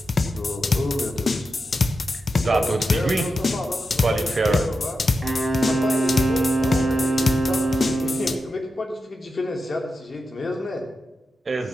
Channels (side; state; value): both; normal; correlation 0.89